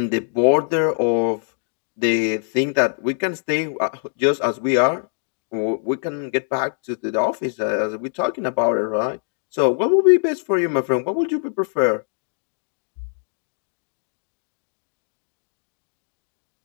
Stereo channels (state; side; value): silent; right; digital silence